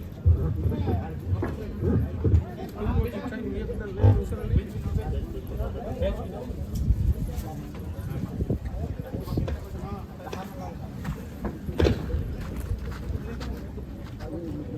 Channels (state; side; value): identical; both; correlation 1.00